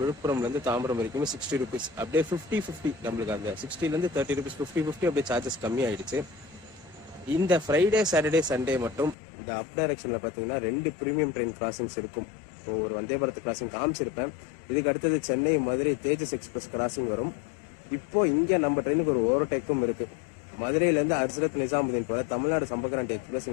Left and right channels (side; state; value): right; drops out; at 9.2 s